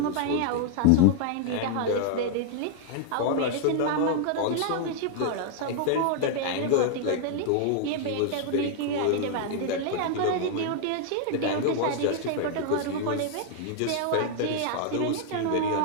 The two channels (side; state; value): both; different; correlation 0.00